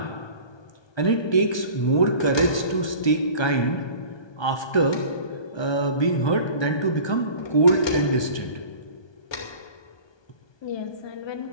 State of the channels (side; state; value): right; late; 1.2 ms